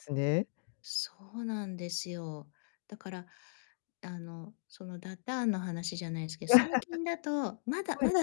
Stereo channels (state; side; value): silent; right; digital silence